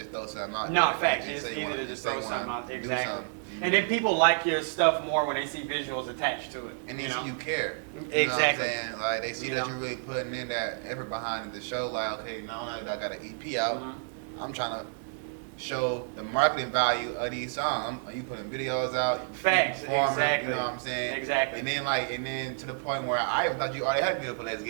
throw something out. No, there. facts. You It's say you easy wanna- to you just say throw you wanna something out. do Exactly. something. And then people like your stuff more when they see visuals attached to it. And they you see know? you care. Exactly. You know what I'm saying? Like they see You that know? you're really putting in that effort behind the show. Like, okay, now that I got an EP out, I'm trying to show the marketing value of these songs. You putting videos out, you Facts, performing, exactly. You know what I'm saying? Exactly. And then to the point where I even thought you already had a video for Let's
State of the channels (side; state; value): left; silent; digital silence